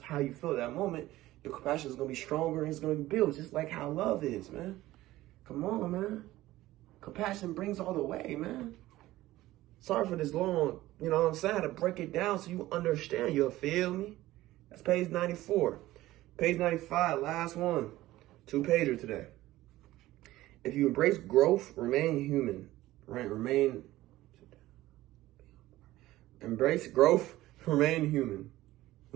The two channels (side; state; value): left; quieter; 16.4 dB